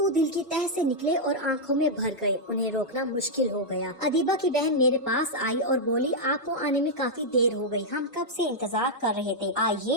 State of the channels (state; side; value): normal; both; correlation -0.05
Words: دل کی تہ سے نکلے اور آنکھوں میں بھر گئے، انہیں روکنا مشکل ہو گیا۔ ادیبہ کی بہن میرے پاس آئی اور بولی آپ کو آنے میں کافی دیر ہو گئی، ہم کب سے انتظار کر رہے تھے،